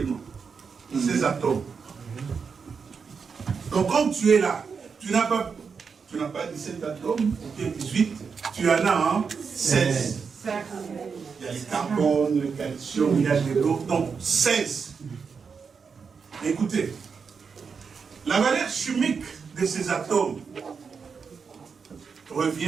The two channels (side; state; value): left; quieter; 5.7 dB